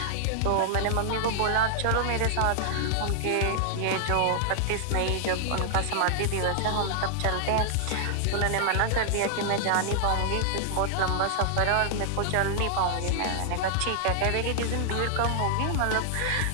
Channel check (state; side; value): different; both; correlation -0.01